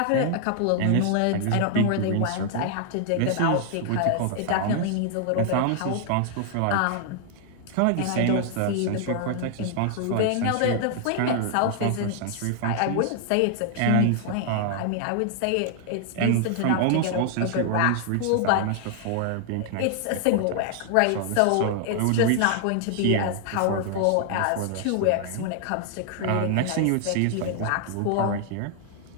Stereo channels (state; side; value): different; both; correlation 0.00